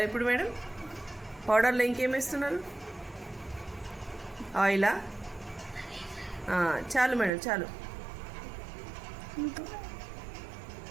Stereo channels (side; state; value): left; drops out; at 7.3 s